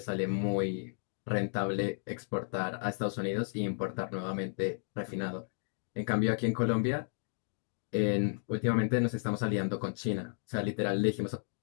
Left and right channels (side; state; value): right; silent; digital silence